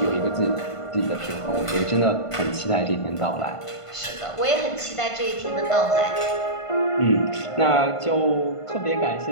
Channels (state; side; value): late; right; 1.5 ms